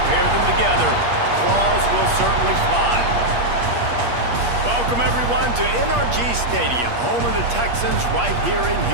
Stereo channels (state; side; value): late; left; 8.4 ms